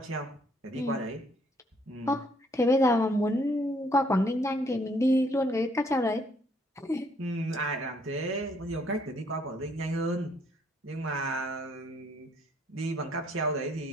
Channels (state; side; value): normal; both; correlation 0.67